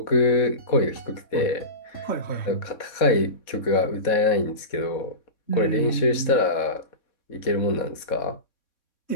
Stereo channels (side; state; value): right; late; 3.6 ms